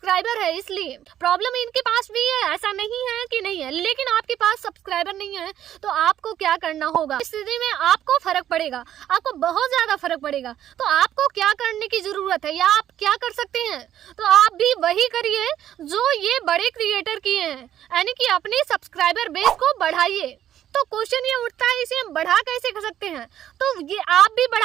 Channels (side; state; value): left; quieter; 11.2 dB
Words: है। इसलिए प्रॉब्लम इनके पास भी है, ऐसा नहीं है कि नहीं है, लेकिन आपके पास सब्सक्राइबर नहीं है तो आपको क्या करना होगा। इस स्थिति में आपको फर्क पड़ेगा, आपको बहुत ज्यादा फर्क पड़ेगा। तो आपको क्या करने की जरूरत है या आप क्या कर सकते हैं, तो आप भी वही करिए जो ये बड़े क्रिएटर किए हैं, यानी कि अपने सब्सक्राइबर बेस को बढ़ाइए। तो क्वेश्चन ये उठता है इसे हम बढ़ा कैसे कर सकते हैं, तो ये आप भी